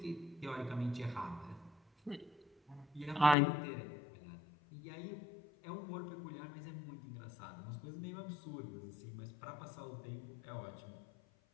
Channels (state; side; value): drops out; right; at 3.4 s